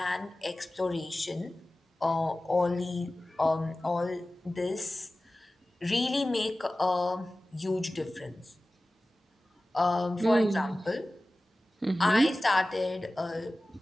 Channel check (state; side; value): normal; both; correlation 0.96